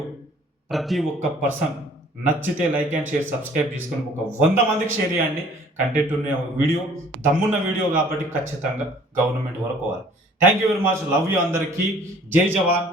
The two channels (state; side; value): normal; both; correlation 0.54